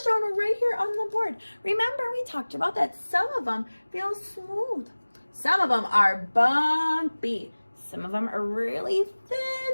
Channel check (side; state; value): both; inverted; correlation -1.00